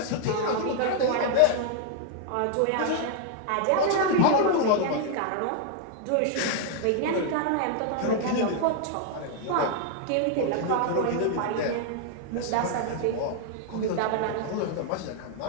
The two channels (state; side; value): different; both; correlation 0.00